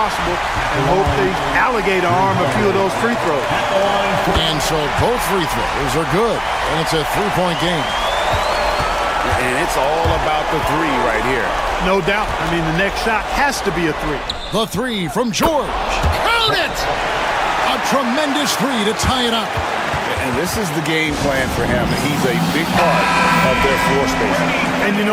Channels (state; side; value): identical; both; correlation 1.00